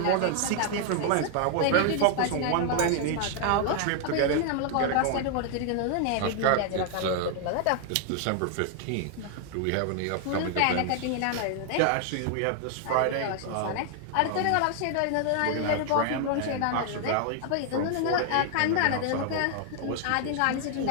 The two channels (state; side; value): different; both; correlation 0.00